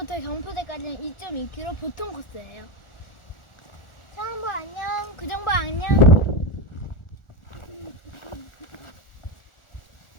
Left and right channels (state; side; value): late; right; 1.4 ms